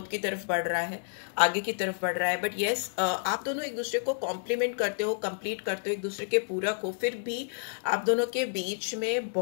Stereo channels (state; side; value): silent; right; 58 dB below the other